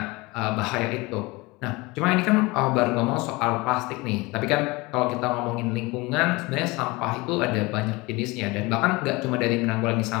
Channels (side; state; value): right; quieter; 23.6 dB